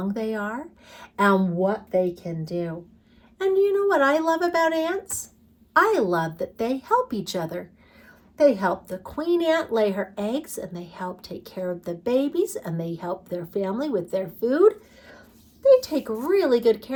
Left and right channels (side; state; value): both; identical; correlation 1.00